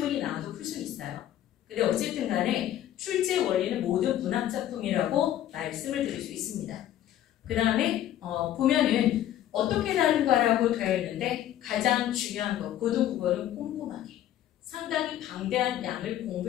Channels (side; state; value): right; quieter; 12.2 dB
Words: 나와도 풀 수 있어요. 근데 어쨌든 간에 출제 원리는 모든 문학작품이라고 말씀을 드릴 수 있습니다. 그 다음에 보면은 어떻게 다른가라고 되어 있는데 가장 중요한 거 고등국어는 꼼꼼하게 상당히 방대한 양을